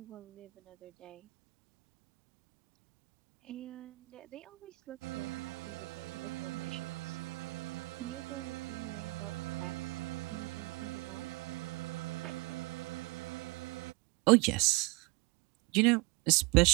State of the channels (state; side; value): quieter; left; 24.6 dB